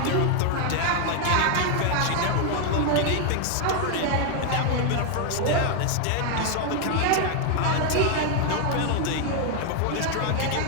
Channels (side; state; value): both; different; correlation 0.00